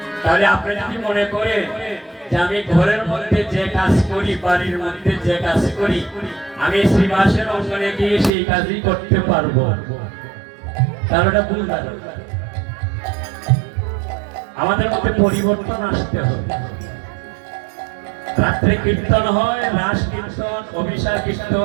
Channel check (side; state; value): left; drops out; at 8.3 s